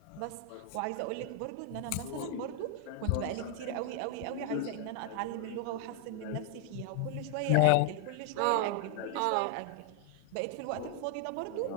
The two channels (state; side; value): different; both; correlation -0.01